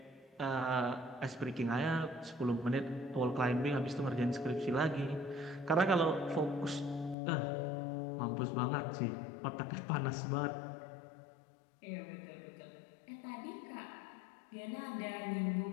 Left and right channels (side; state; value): right; drops out; at 7.2 s